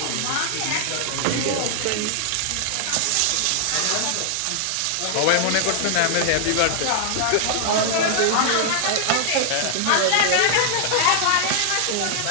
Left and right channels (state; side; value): different; both; correlation -0.01